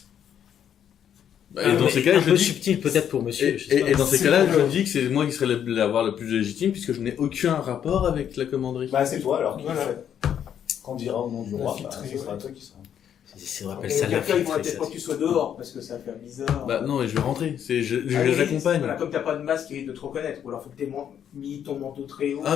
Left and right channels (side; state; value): right; quieter; 9.2 dB